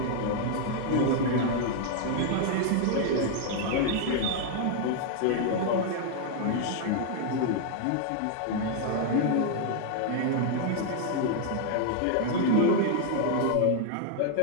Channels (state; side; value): different; both; correlation 0.00